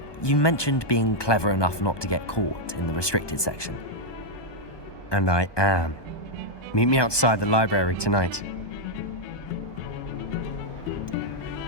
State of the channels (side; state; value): right; late; 1.2 ms